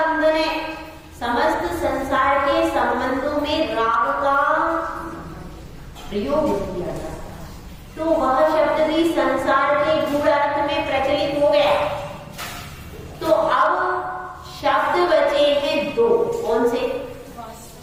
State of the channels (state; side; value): identical; both; correlation 1.00